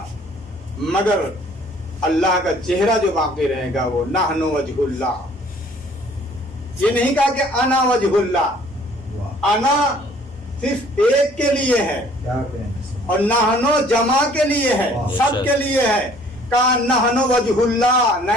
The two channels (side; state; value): both; normal; correlation 0.56